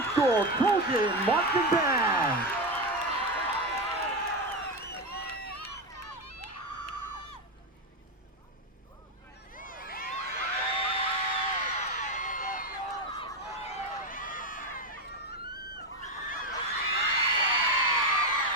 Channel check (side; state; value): both; normal; correlation 0.12